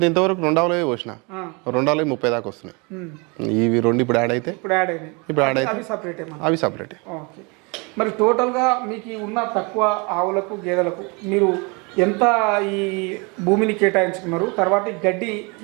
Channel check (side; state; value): left; quieter; 30.0 dB